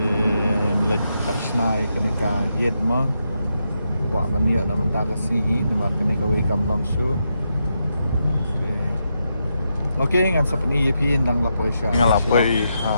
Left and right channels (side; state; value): both; inverted; correlation -0.84